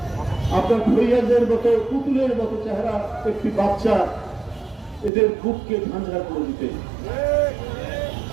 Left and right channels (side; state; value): left; drops out; at 5.1 s